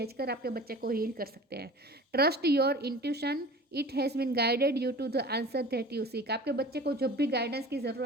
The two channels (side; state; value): both; normal; correlation 0.41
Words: आपके बच्चे को हील कर सकते हैं। Trust your intuition, it has been guided you to the answer that you seek. आपके बच्चे को जब भी गाइडेंस की